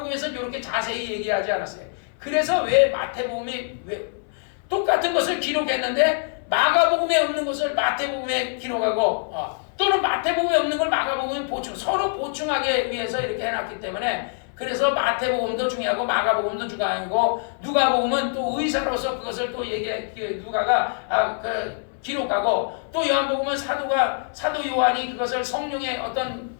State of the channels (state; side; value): silent; right; 58 dB below the other